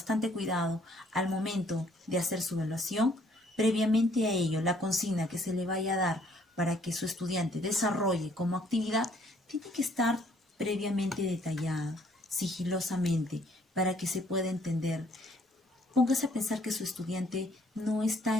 cuidado al momento de hacer su evaluación. Previamente a ello, la consigna que se le vaya a dar para que su estudiante desarrolle como actividad tiene que estar previamente detallada, sigilosamente, para que se pueda entender. Póngase a pensar que su estudiante no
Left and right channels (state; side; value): normal; both; correlation 0.63